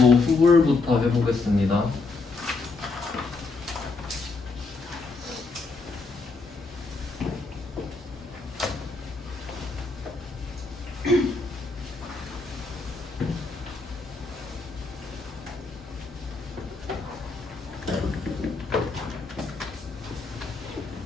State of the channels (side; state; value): right; quieter; 3.9 dB